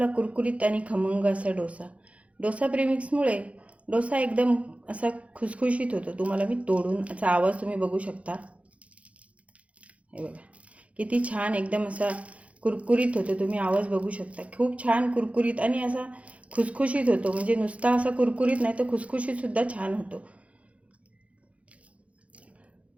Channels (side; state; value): left; late; 0.064 ms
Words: कुरकुरीत आणि खमंग असा डोसा. डोसा प्रीमिक्समुळे डोसा एकदम असा खुसखुशीत होतो. तुम्हाला मी तोडून असा आवाज तुम्ही बघू शकता. हे बघा किती छान एकदम असा कुरकुरीत होतो. तुम्ही आवाज बघू शकता. खूप छान कुरकुरीत आणि असा खुसखुशीत होतो. म्हणजे नुसता असा कुरकुरीत नाही तर खुसखुशीत सुद्धा छान होतो.